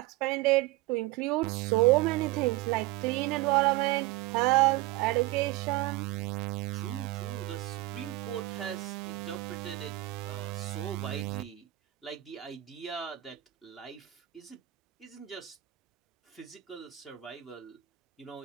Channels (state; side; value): quieter; left; 18.0 dB